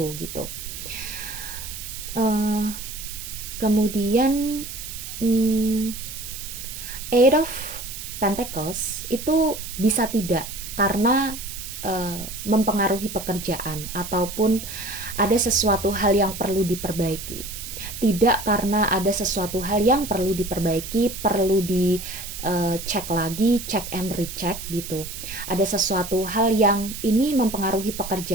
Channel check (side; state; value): right; noise; hiss, 9 dB below the sound